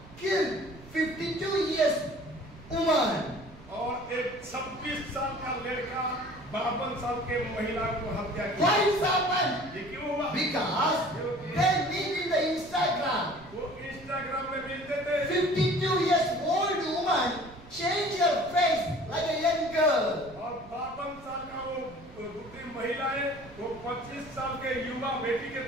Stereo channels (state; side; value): noise; right; rumble, 20 dB below the sound